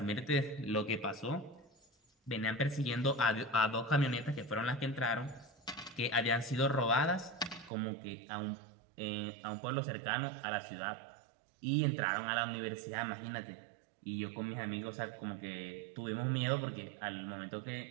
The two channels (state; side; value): drops out; left; at 7.7 s